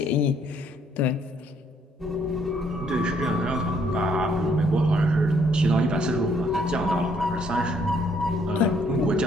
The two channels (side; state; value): both; normal; correlation 0.67